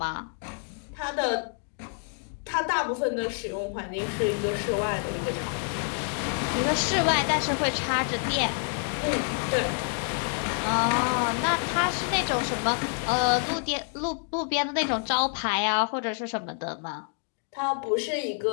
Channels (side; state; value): right; silent; 56 dB below the other